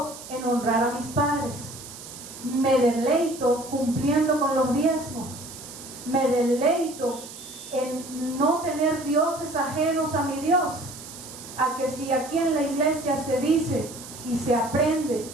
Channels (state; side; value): noise; right; hiss, 14 dB below the sound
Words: en honrar a mis padres. Me deleito cumpliendo con los diezmos. Me deleito en no tener dioses ajenos a mi Dios. A que si aquí en la iglesia se dice y se aprende